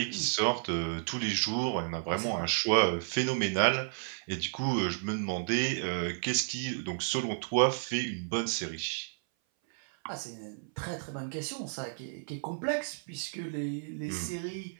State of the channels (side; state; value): left; silent; 56 dB below the other